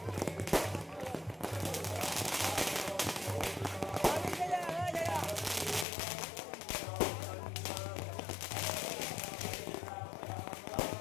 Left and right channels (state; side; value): drops out; right; at 5.9 s